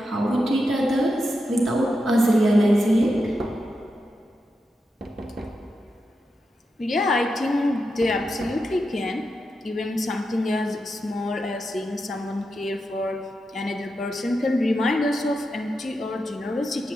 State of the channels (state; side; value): normal; both; correlation 0.87